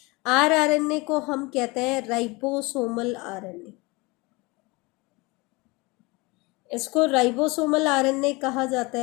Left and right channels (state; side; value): quieter; right; 25.0 dB